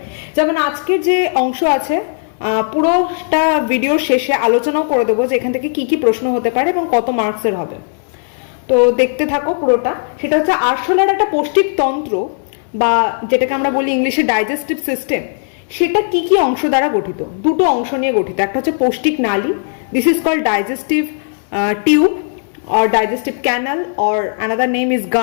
যেমন আজকের যে অংশ আছে পুরোটা ভিডিওর শেষে আলোচনাও করে দেবো যে এখান থেকে কি কি প্রশ্ন হতে পারে এবং কত মার্কসের হবে। তো দেখতে থাকো পুরোটা। সেটা হচ্ছে আরশোলার একটা পৌষ্টিকতন্ত্র বা যেটাকে আমরা বলি ইংলিশে ডাইজেস্টিভ সিস্টেম, সেটা কি কি অংশ দ্বারা গঠিত। দুটো অংশ নিয়ে গঠিত, একটা হচ্ছে পৌষ্টিক নালী, this is called digestive tube or digestive canal or another name is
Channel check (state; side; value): silent; right; 66 dB below the other